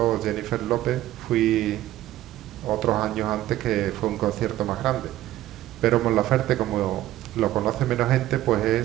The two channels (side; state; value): left; quieter; 14.4 dB